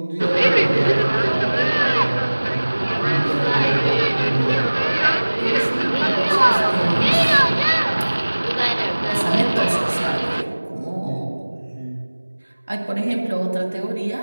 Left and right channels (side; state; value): both; inverted; correlation -1.00